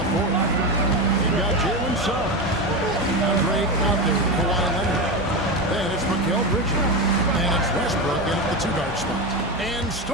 4th. You've got Jalen Suggs. Andre out there, Kawhi Leonard. Then it's Mikal Bridges. And it's Westbrook in at the 2-guard spot. And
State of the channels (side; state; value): both; normal; correlation 0.17